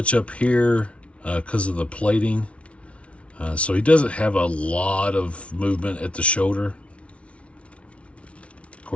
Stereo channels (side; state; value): right; late; 0.062 ms